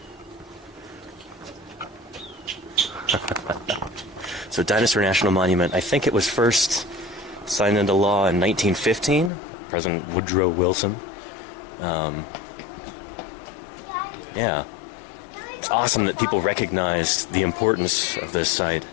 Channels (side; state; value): right; drops out; at 9.3 s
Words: So Dinosaur National Monument, I think it was first signed into law in 1915, President Woodrow Wilson. Yeah, it's awesome that people recognized the importance of this site